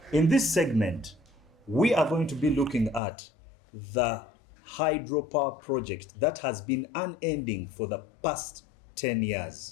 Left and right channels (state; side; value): drops out; right; at 3.0 s